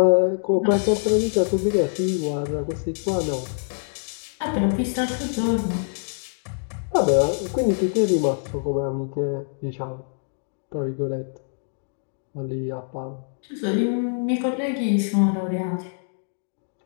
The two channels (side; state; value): right; silent; digital silence